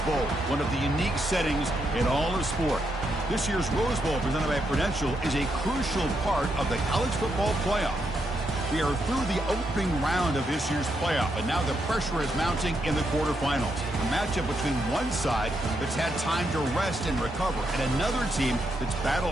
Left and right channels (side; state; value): both; normal; correlation 0.80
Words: Bowl, one of the unique settings in all of sport. This year's Rose Bowl, presented by Prudential, is a crucial part of the college football playoff. We are through the opening round of this year's playoff, and now the pressure is mounting in the quarterfinals. A matchup between one side that's had time to rest and recover, and another team that's